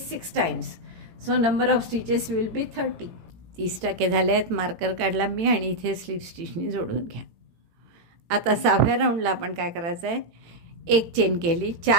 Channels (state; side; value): late; left; 18 ms